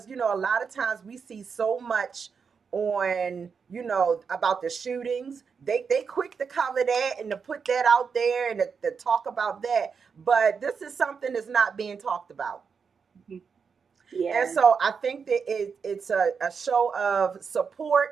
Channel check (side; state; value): left; quieter; 5.9 dB